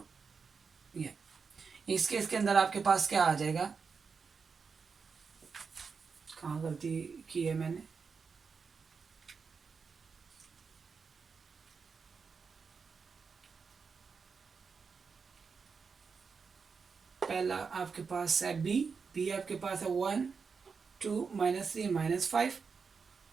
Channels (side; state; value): left; quieter; 5.4 dB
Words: ये इस केस के अंदर आपके पास क्या आ जाएगा, कहाँ गलती की है मैंने, पहला आपके पास है बी आपके पास है 1 2 -3 -5,